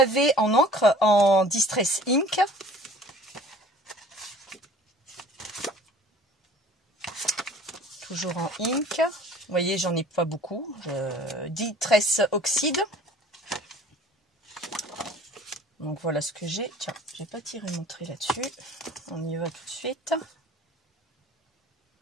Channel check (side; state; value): both; normal; correlation 0.49